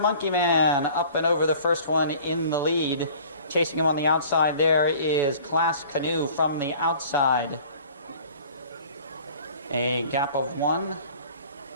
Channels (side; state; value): both; inverted; correlation -0.49